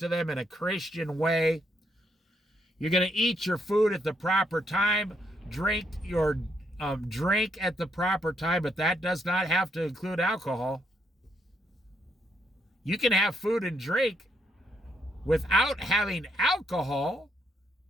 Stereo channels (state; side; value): normal; both; correlation 0.75